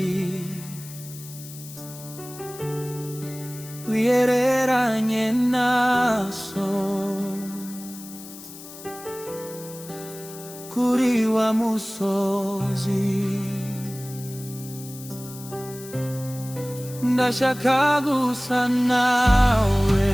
wiyereranye naso kuri wa musozi. Ndashaka gusa nawe,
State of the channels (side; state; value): left; noise; hiss, 15 dB below the sound